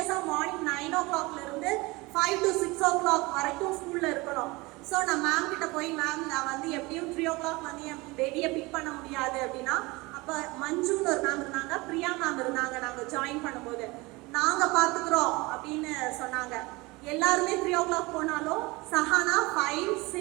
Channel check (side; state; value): left; quieter; 23.4 dB